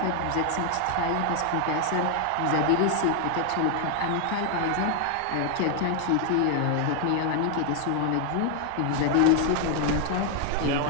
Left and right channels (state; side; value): different; both; correlation 0.00